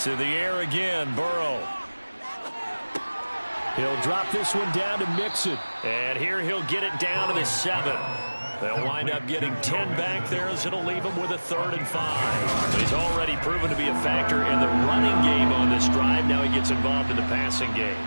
To the air again, Burrow. He'll drop this one down to Mixon. And here he'll get it down to the 7. They'll wind up getting 10 back there, as it'll leave him with a 3rd and 5. But he's already proven to be a factor in the running game on this drive. Now he gets involved in the passing game.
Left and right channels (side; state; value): both; inverted; correlation -1.00